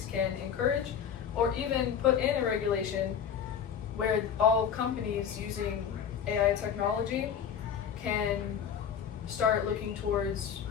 can encourage or even put in a regulation where all companies using AI technology can start looking towards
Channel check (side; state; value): right; quieter; 8.0 dB